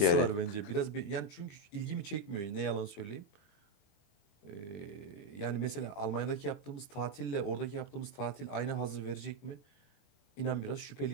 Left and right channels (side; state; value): right; late; 20 ms